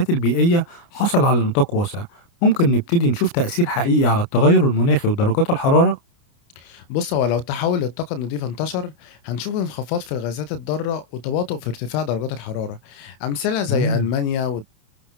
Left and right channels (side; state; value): right; late; 29 ms